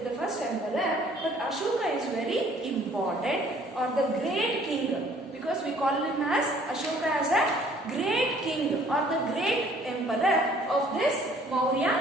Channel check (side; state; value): both; normal; correlation 0.57